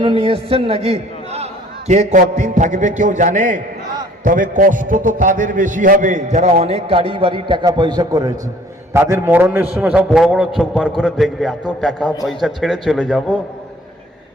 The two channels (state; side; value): normal; both; correlation 0.55